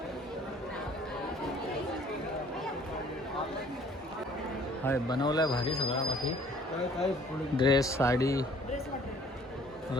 हाय बनवलाय भारी सगळा. बाकी काय काय पुढे ड्रेस, साडी,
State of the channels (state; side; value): normal; both; correlation 0.55